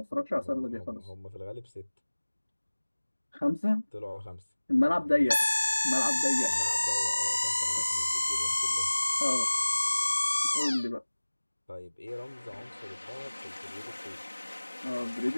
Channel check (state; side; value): inverted; both; correlation -1.00